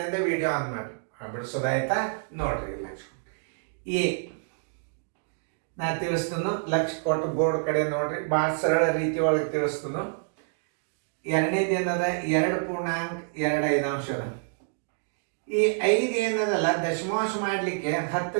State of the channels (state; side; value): silent; left; 58 dB below the other